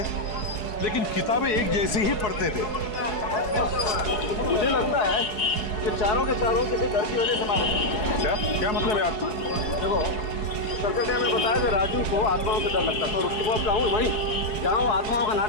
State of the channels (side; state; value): right; late; 4.7 ms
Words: लेकिन किताबें एक जैसी ही पढ़ते थे। मुझे लगता है कि चारों के चारों किसी डर की वजह से मारे। क्या मतलब है आपको? देखो, सर्कल ने हमें बताया कि राजू को आत्माओं से डर लगता था, और उसके बाद कहूँ वहीं जहाँ वो आत्माओं का